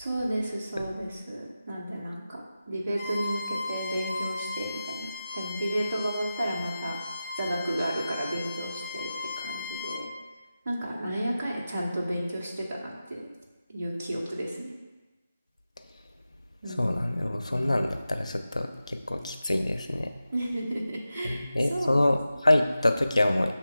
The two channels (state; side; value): inverted; both; correlation -0.93